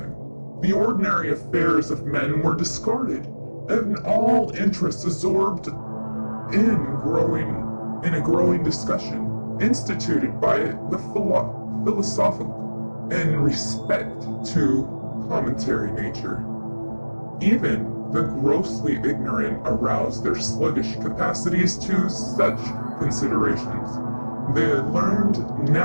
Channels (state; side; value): inverted; both; correlation -1.00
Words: the ordinary affairs of men were discarded, and all interest absorbed in a growing discussion instituted by the philosophical in respect to commentary nature. Even the grossly ignorant aroused their sluggish capacities to such considerations. The learned